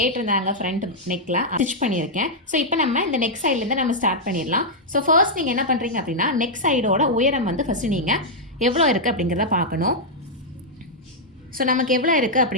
ஃப்ரண்ட் நெக்கில் ஸ்டிச் பண்ணியிருக்கேன். ஸோ இப்போ நம்ம இந்த நெக் சைட்லேருந்து நம்ம ஸ்டார்ட் பண்ணிடலாம். ஸோ ஃபர்ஸ்ட் நீங்கள் என்ன பண்ணுறீங்க அப்படின்னா நெக் சைடோட உயரம் வந்து ஃபஸ்ட்டு நீங்கள் எவ்வளோ இருக்குது அப்படிங்கிறத பார்க்கணும். ஸோ நமக்கு எவ்வளோ இருக்குது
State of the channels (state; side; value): normal; both; correlation -0.05